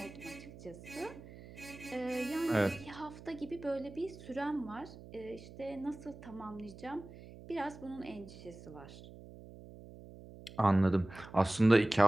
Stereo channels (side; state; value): right; noise; hum, 17 dB below the sound